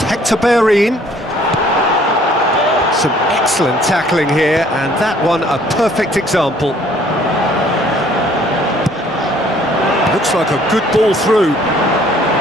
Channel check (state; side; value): normal; both; correlation 0.59